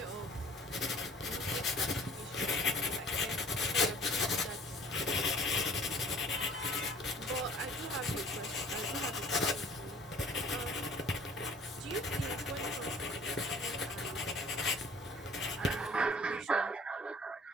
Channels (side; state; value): both; normal; correlation 0.51